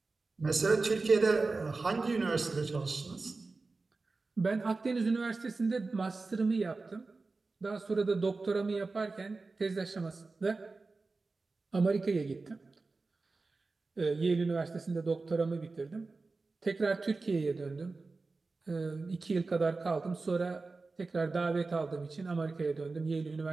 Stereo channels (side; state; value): left; quieter; 3.8 dB